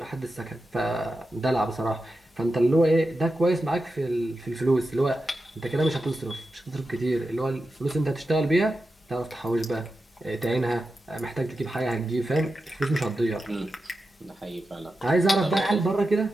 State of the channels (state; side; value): normal; both; correlation 0.90